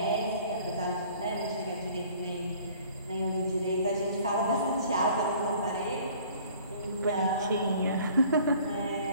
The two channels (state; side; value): inverted; both; correlation -0.53